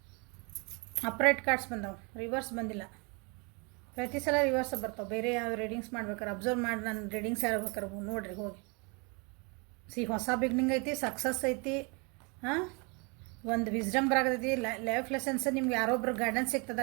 ಅಪ್ರೈಟ್ ಕಾರ್ಡ್ಸ್ ಬಂದವು, ರಿವರ್ಸ್ ಬಂದಿಲ್ಲ. ಪ್ರತಿ ಸಲ ರಿವರ್ಸ್ ಬರ್ತಾವೆ. ಬೇರೆ ಯಾವ ರೀಡಿಂಗ್ಸ್ ಮಾಡ್ಬೇಕಾರೆ ಅಬ್ಸರ್ವ್ ಮಾಡಿ ನಾನು ರೀಡಿಂಗ್ಸ್ ಯಾರು ಬೇಕಾರೆ ನೋಡಿರಿ ಹೋಗಿ. ಹೊಸ ಬಿಗ್ನಿಂಗ್ ಐತಿ, ಸಕ್ಸಸ್ ಐತಿ, ಹಾಂ, ಒಂದು ವಿಸ್ಡಮ್ ಬರಾಗತೈತಿ, ಲೈಫ್ ಲೆಸನ್ಸ್, ನಿಮ್ಗೆ ಯಾರೊಬ್ರು ಗೈಡೆನ್ಸ್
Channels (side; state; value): left; quieter; 31.6 dB